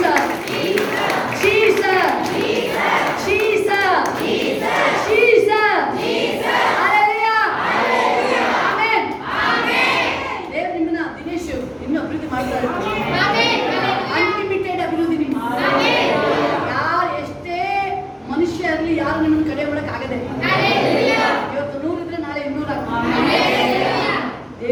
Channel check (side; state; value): both; identical; correlation 1.00